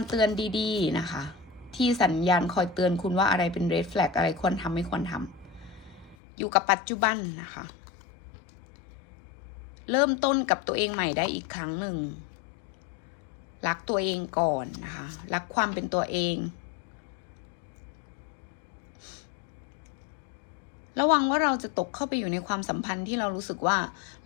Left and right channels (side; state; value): right; drops out; at 6.2 s